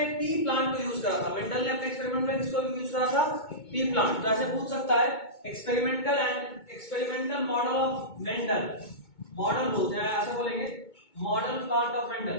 पी प्लांट को यूज करा था। मेंडल ने अपने एक्सपेरिमेंट में किसको यूज करा था? P plant. तो ऐसे पूछ सकता है experimental model of Mendel, model बोलते हैं, ऐसा बोलेंगे model plant of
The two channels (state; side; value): late; right; 2.2 ms